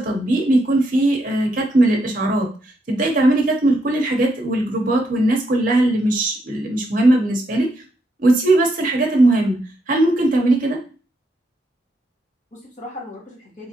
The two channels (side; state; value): both; normal; correlation 0.79